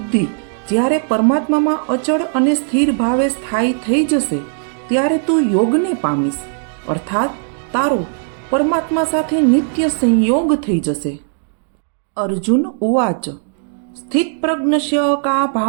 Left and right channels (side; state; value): left; silent; digital silence